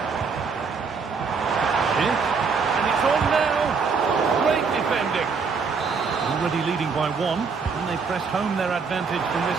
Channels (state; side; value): quieter; left; 5.2 dB